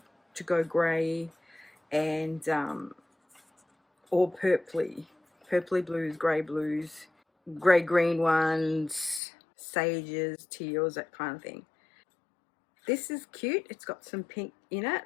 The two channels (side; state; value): right; drops out; at 9.2 s